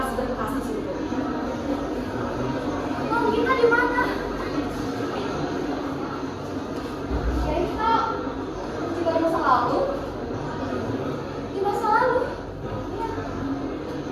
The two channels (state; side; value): identical; both; correlation 1.00